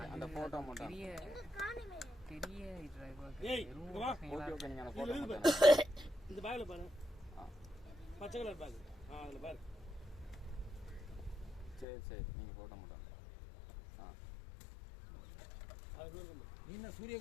அந்த போட்டோ மட்டும் பெரிய ஏய் இங்க வா. Okay okay. நீங்க அந்த போட்டோ மட்டும் இந்த பேக்ல பாரு. பச்சை கலர் பேக். அதுல பாரு. சரி சரி. நீங்க போட்டோ மட்டும் நீ என்ன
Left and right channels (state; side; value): drops out; right; at 11.9 s